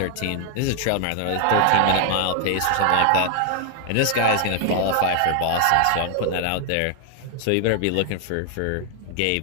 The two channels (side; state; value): both; different; correlation 0.00